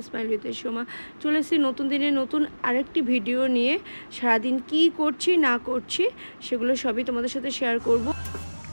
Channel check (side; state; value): both; inverted; correlation -1.00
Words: স্মাইল উইথ সোমা চলে এসেছি নতুন দিনে নতুন আরেকটি ভিডিও নিয়ে। সারাদিন কি করছি না করছি সেগুলো সবই তোমাদের সাথে শেয়ার করব।